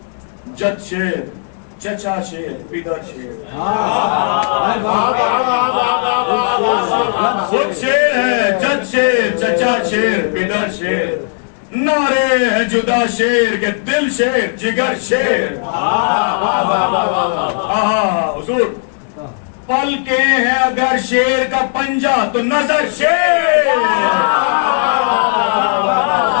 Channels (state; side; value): silent; right; digital silence